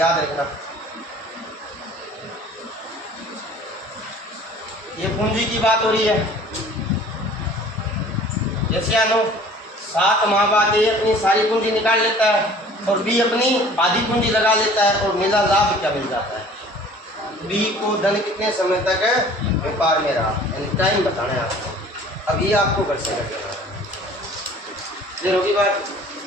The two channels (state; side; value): normal; both; correlation 0.49